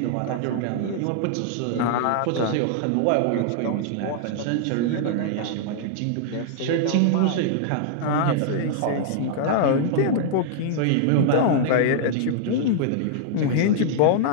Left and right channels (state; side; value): different; both; correlation -0.01